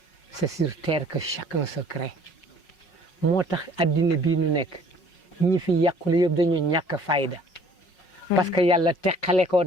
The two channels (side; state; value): right; late; 5.5 ms